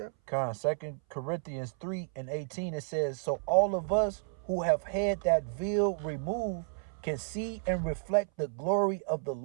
2 Corinthians 3:18, it says, so all of us who have had that veil removed can see and reflect the glory of the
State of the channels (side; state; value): left; silent; 57 dB below the other